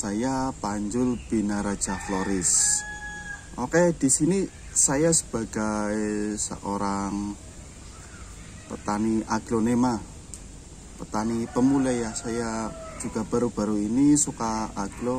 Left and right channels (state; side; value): identical; both; correlation 1.00